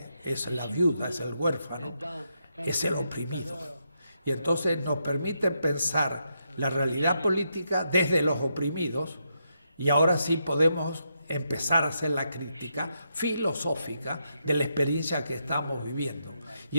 es la viuda, es el huérfano, es el oprimido. Y entonces nos permite pensar la realidad política desde los oprimidos, y ahora sí podemos empezar a hacer la crítica filosófica de la experiencia que estamos viviendo. Y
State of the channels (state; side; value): inverted; both; correlation -0.81